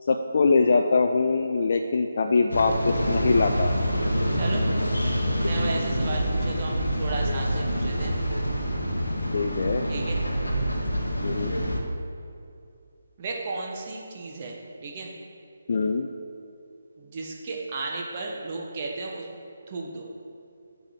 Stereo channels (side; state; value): both; inverted; correlation -0.88